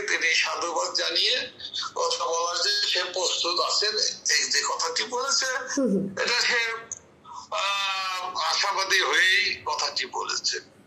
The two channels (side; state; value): both; identical; correlation 1.00